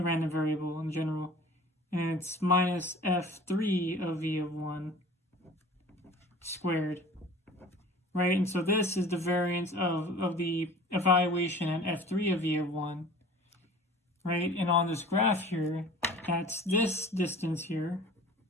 random variable in general. And it's minus f3 of v of 1 squared, right? And so this is the variance of the evaluation at f3 of v of 1, right? And on this graph here, that's this distance here,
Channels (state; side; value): normal; both; correlation 0.44